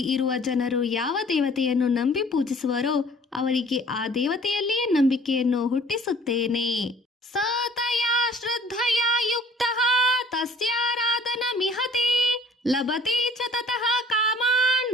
ಇರುವ ಜನರು ಯಾವ ದೇವತೆಯನ್ನು ನಂಬಿ ಪೂಜಿಸುವರೋ ಅವರಿಗೆ ಆ ದೇವತೆಯಲ್ಲಿಯೇ ನಂಬಿಕೆಯನ್ನು ಹುಟ್ಟಿಸುತ್ತೇನೆ. ಸತಯಾ ಶ್ರದ್ಧಯಾ ಯುಕ್ತಃ ತಸ್ಯಾರಾಧನ ಮಿಹತೆ ಲಭತೆ ಚ ತತಃ ಕಾಮಾನ್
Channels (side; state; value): both; normal; correlation 0.54